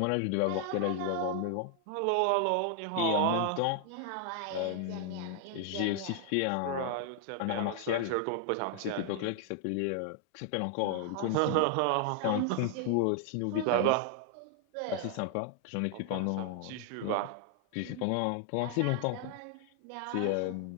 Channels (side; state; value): both; different; correlation 0.00